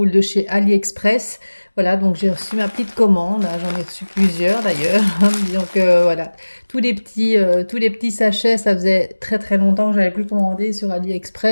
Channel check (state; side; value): inverted; both; correlation -1.00